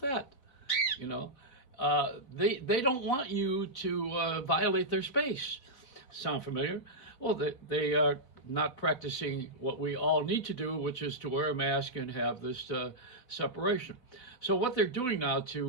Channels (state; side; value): late; right; 4.0 ms